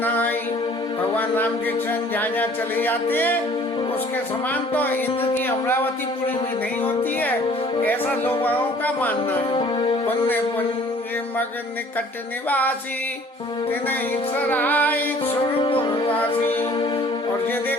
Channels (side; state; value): both; normal; correlation 0.53